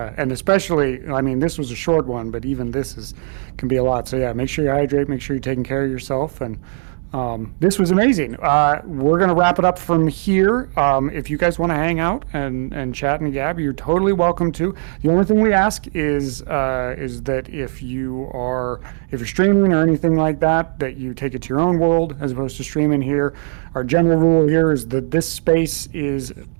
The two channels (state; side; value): silent; left; 56 dB below the other